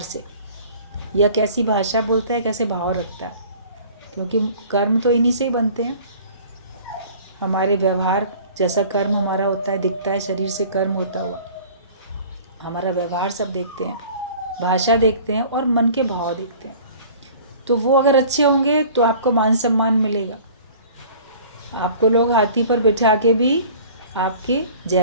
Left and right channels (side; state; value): both; inverted; correlation -0.47